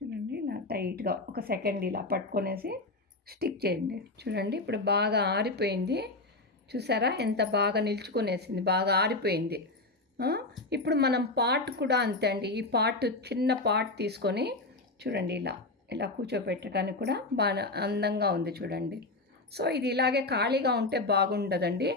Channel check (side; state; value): right; quieter; 3.1 dB